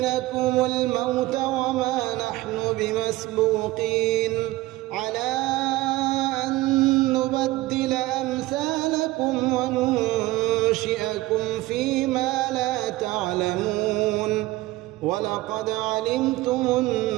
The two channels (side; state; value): left; quieter; 18.1 dB